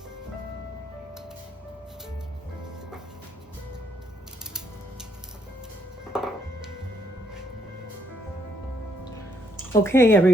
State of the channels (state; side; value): normal; both; correlation 0.72